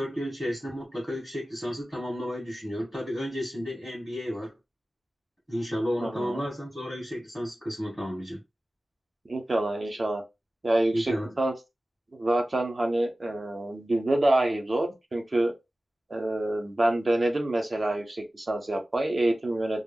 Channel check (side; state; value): both; normal; correlation 0.96